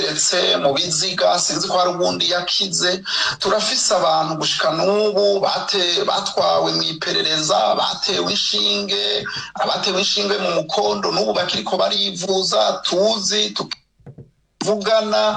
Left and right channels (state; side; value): identical; both; correlation 1.00